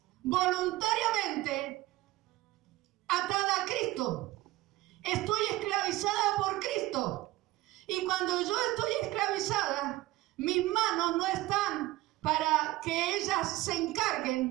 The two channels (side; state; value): left; quieter; 18.0 dB